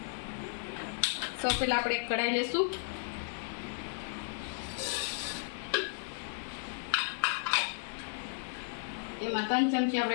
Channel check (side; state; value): right; silent; 55 dB below the other